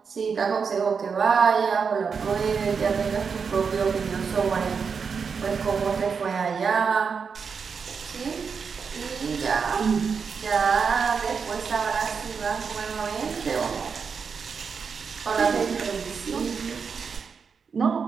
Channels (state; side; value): quieter; left; 5.8 dB